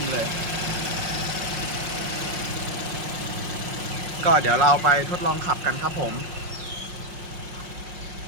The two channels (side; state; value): left; late; 5.7 ms